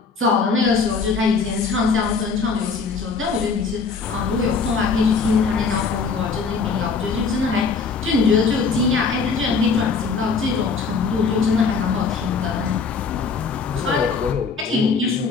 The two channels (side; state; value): right; quieter; 5.0 dB